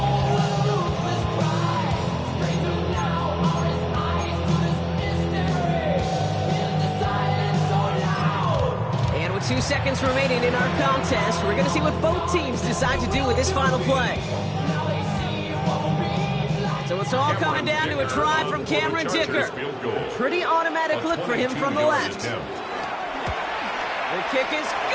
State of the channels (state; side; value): identical; both; correlation 1.00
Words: And with 2 seconds remaining in our contest, we're going to see what both teams decide to do with this final play. So it's all coming down to a try from Cameron Dicker. Pretty automatic look for him from the left. The kick is